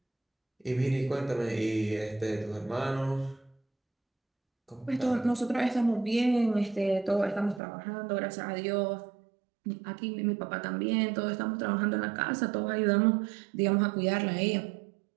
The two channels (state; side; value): drops out; left; at 7.6 s